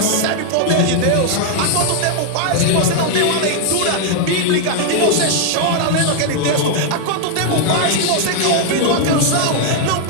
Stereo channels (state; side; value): different; both; correlation 0.00